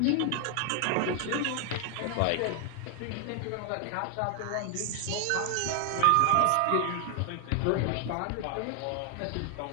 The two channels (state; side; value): different; both; correlation 0.00